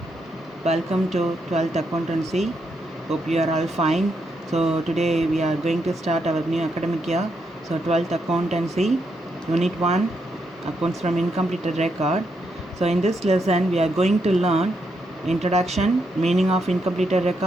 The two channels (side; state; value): both; normal; correlation 0.80